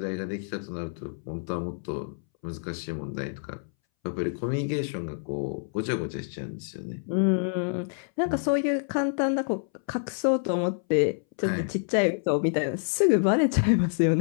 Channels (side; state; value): right; silent; 60 dB below the other